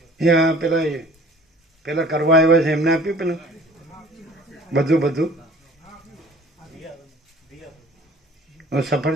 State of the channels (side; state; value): both; normal; correlation 0.49